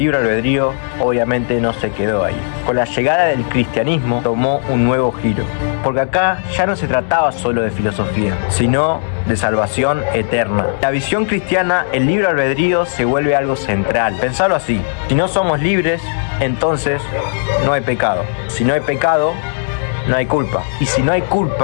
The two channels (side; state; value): right; silent; digital silence